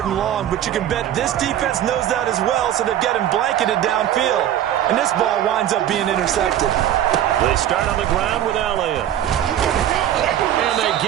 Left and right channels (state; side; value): quieter; left; 11.4 dB